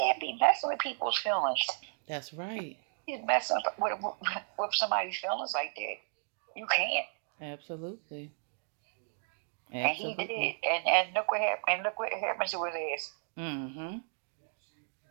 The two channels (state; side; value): silent; left; digital silence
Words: be messing with people's feelings. That's right. You're messing with somebody's feelings like that. You can't. Absolutely. And he did. And look what happened. And look what happened to his ass. Mm-hmm.